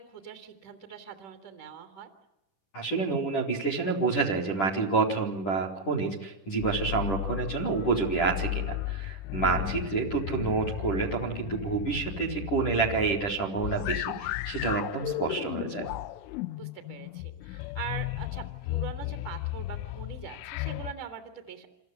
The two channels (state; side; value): late; right; 10 ms